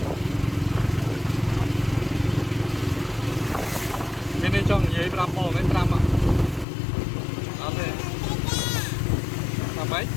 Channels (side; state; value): right; drops out; at 6.7 s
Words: Bên đây cho người làm bò mấy trăm ạ. Đó thế. Làm mấy?